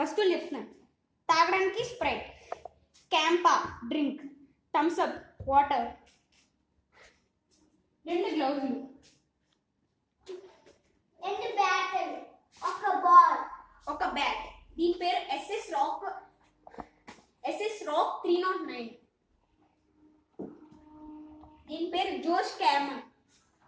చెప్తున్నాను. తాగడానికి Sprite, CAMPA drink, Thums Up water, 2 గ్లౌజులు, 2 battle, ఒక బాల్, ఒక బ్యాట్. దీని పేరు ఎస్ఎస్ రాక్ 309. దీని పేరు జోష్ క్యామన్.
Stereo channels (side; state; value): both; identical; correlation 1.00